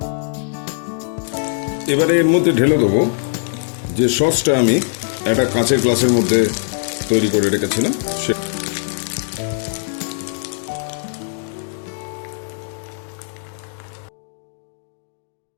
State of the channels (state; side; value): silent; right; digital silence